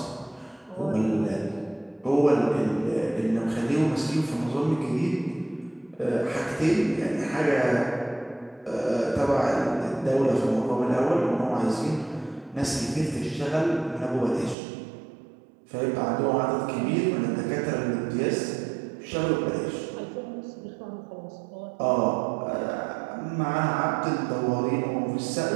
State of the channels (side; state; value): left; drops out; at 14.6 s